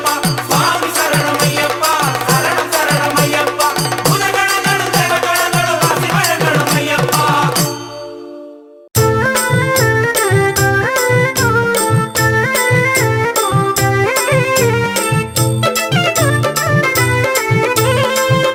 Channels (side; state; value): both; identical; correlation 1.00